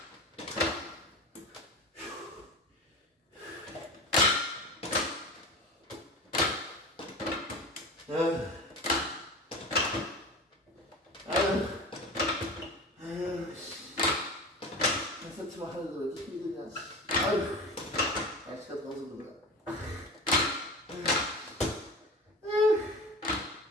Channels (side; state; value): both; normal; correlation 0.31